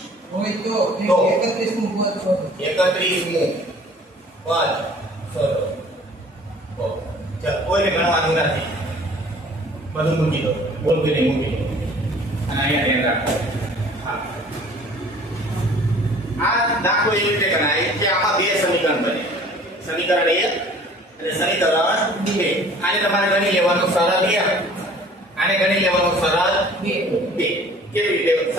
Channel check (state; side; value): normal; both; correlation 0.50